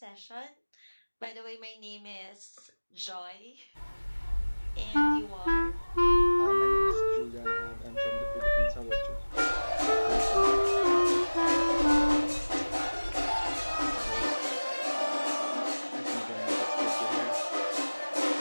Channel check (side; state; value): both; inverted; correlation -1.00